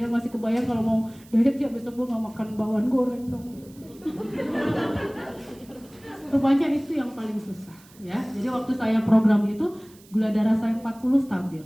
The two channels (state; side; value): noise; right; hiss, 26 dB below the sound